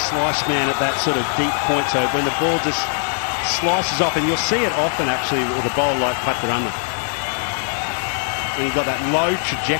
man at that sort of deep point. So when the ball just slices off, and you'll see it often actually with a bowler like Patirana. When you've got that low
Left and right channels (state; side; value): silent; right; 65 dB below the other